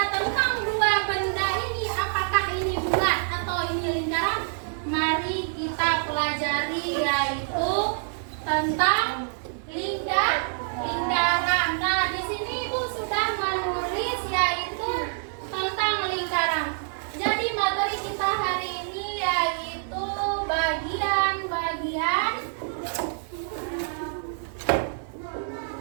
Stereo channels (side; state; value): left; silent; 61 dB below the other